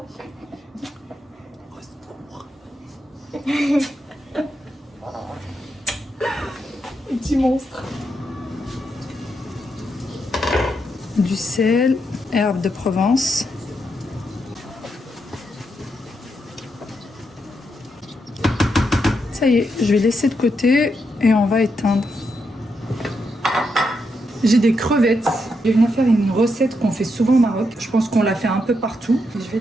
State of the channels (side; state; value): both; normal; correlation 0.82